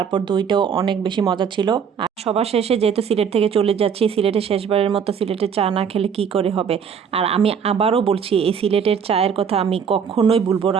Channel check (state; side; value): quieter; left; 7.0 dB